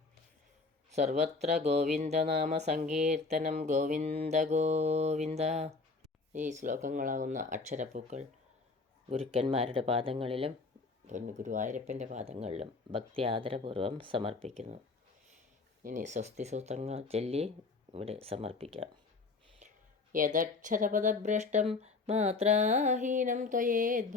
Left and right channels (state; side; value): quieter; right; 4.0 dB